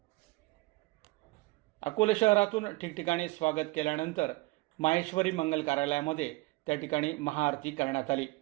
अकोले शहरातून ठिकठिकाणी स्वागत केल्यानंतर माहेश्वरी मंगल कार्यालयामध्ये त्या ठिकाणी महाआरती करण्यात आली।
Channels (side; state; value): left; quieter; 22.6 dB